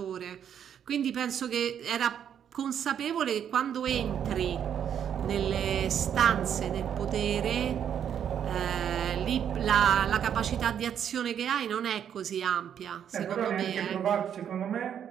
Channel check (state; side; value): quieter; left; 8.9 dB